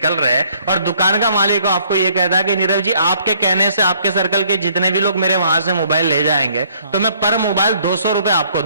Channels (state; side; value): inverted; both; correlation -0.63